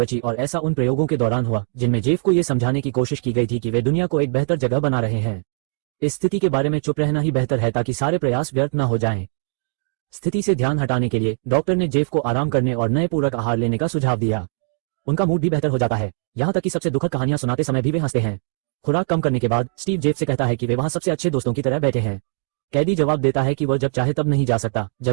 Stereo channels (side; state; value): left; silent; digital silence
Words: और ऐसा उन प्रयोगों के दौरान हुआ जिनमें जेफ को यह समझाने की कोशिश की गई थी कि वे दुनिया को एक बेहतर जगह बना रहे हैं। इस स्थिति के बारे में चुप रहना ही बेहतर है ताकि सारे प्रयास व्यर्थ न हो जाएं। स्थिति से ध्यान हटाने के लिए डॉक्टर ने जेफ को आराम करने और नए पूरक आहार लेने का सुझाव दिया। उनका मूड भी बेहतर हो जाता है, यहाँ तक कि सबसे दुखद कहानियां सुनाते समय भी वे हंसते हैं। खुराक कम करने के बाद स्टीव जेफ से कहता है कि वे वहां सबसे अच्छे दोस्तों की तरह बैठे हैं। कैदी जवाब देता है कि वह जब चाहे तब नहीं जा सकता,